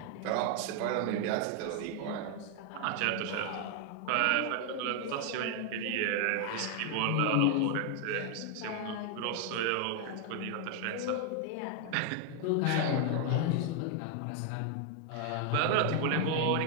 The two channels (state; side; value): different; both; correlation 0.00